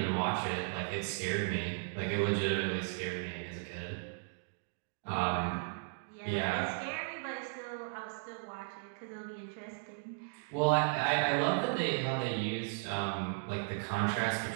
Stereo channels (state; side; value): silent; left; digital silence